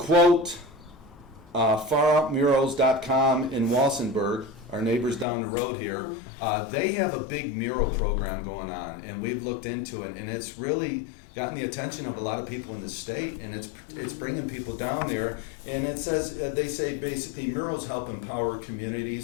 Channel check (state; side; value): drops out; right; at 5.2 s